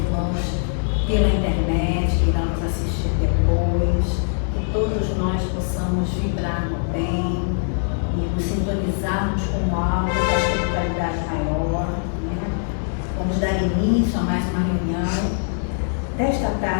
pela internet que irão nos assistir depois, que todos nós possamos vibrar no bem e nos sintonizarmos com algo da espiritualidade maior, né? Vamos dar início a mais uma reunião desta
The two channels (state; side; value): silent; right; digital silence